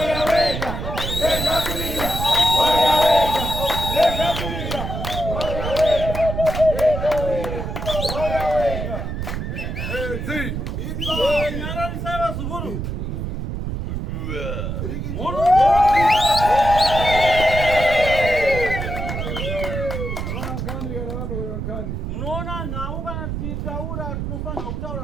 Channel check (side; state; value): right; noise; rumble, 4 dB below the sound